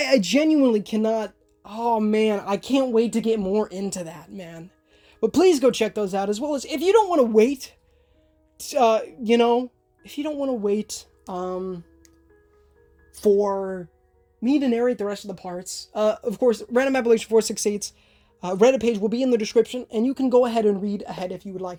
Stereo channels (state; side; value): identical; both; correlation 1.00